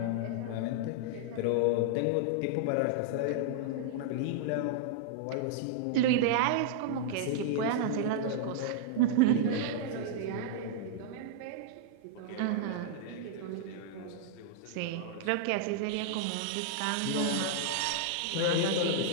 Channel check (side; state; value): both; different; correlation -0.01